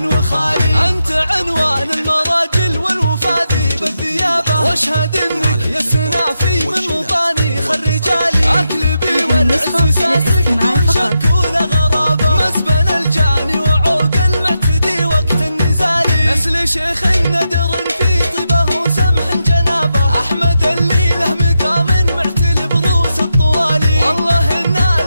وخالي. أنت عنوان المراجل والوفا ذيب الثيابة، واشهد انك يا السنافي من مطانيخ الرجالي. اكلبي والعز ساسك دون شك ولا غرابة، مسبن الجاني وعوق المعتدي وقت النزالي. نسل شيخ ندر في طيبه وسمح جنابه، احمد اللي له مقام معتل بروس الطوالي. والله ان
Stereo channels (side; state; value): both; inverted; correlation -0.86